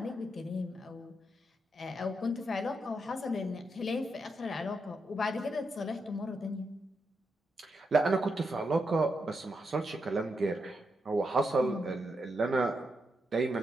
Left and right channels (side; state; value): both; normal; correlation 0.83